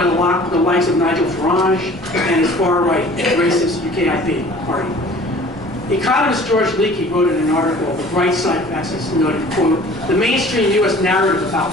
the likes of Nigel Farage and his far-right racist UKIP party. Economist George Leakey wrote in an article, The Bright Side of Access, noted, quote, the mainstream U.S. narrative about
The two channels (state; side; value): noise; right; rumble, 23 dB below the sound